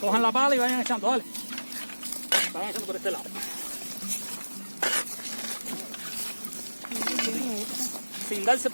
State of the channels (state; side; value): inverted; both; correlation -1.00